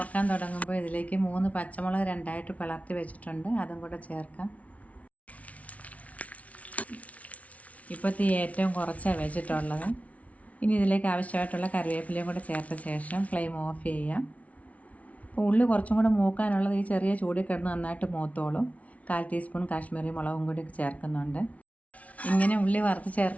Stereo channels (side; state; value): right; late; 0.067 ms